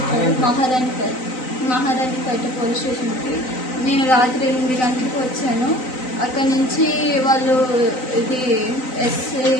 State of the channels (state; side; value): late; right; 3.9 ms